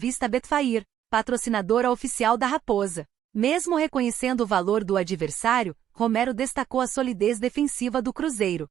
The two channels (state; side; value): quieter; left; 10.5 dB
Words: a Betfair, patrocinadora oficial da Raposa. Mesmo reconhecendo o valor do adversário, Romero destacou a solidez defensiva do Cruzeiro.